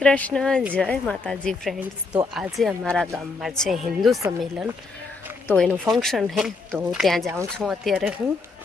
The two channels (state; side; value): quieter; right; 4.0 dB